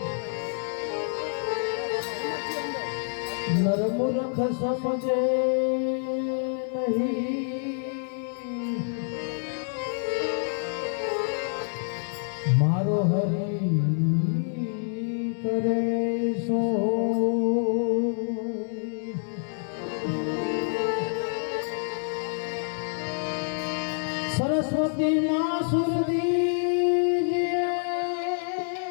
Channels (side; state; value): right; silent; digital silence